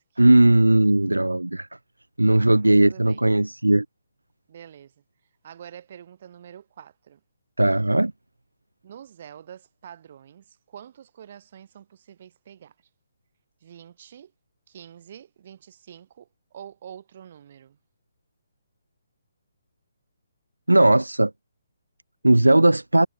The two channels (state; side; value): inverted; both; correlation -1.00